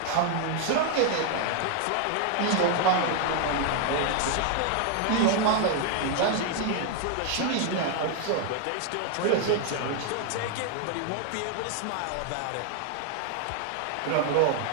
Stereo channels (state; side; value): different; both; correlation 0.00